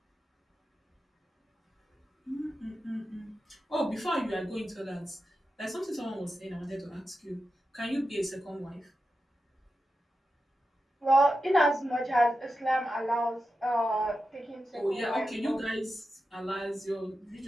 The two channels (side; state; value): both; normal; correlation 0.90